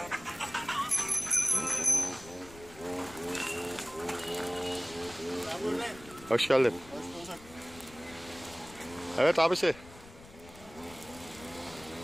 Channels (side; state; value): left; noise; rumble, 20 dB below the sound